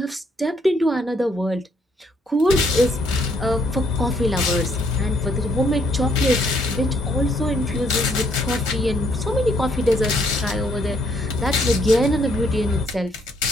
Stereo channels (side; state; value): both; normal; correlation 0.69